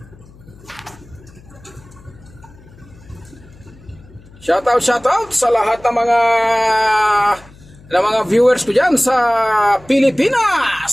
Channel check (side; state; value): left; noise; hum, 24 dB below the sound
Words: Shoutout sa lahat ng mga viewers ko dyan sa